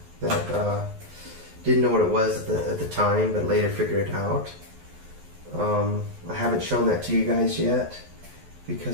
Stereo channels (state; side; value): late; left; 11 ms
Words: that didn't know what it was at the time, but later figured it out. I haven't shown that to you guys yet